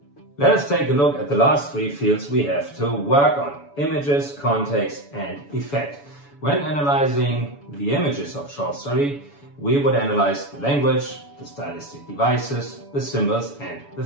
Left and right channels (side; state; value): right; late; 7.0 ms